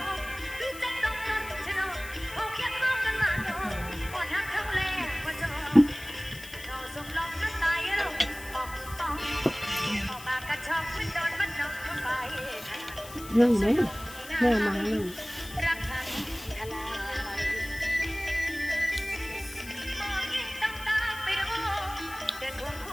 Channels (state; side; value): noise; left; hiss, 15 dB below the sound